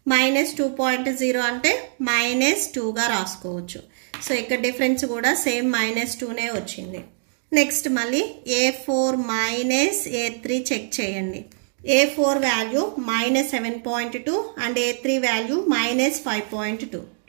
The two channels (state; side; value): silent; left; digital silence